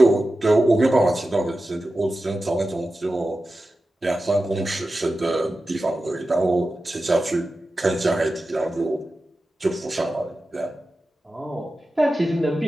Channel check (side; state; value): both; normal; correlation 0.93